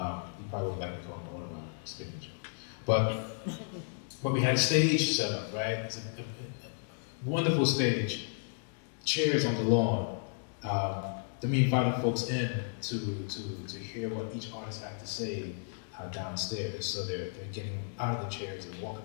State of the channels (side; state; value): right; silent; digital silence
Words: probably would like to call him Autobot spinach. But we had a stage set up, right? It's a wonderful stage, chairs on the lawn. Then we invited folks in to hear what each artist had to say downstairs. So they're getting out of the chairs and walking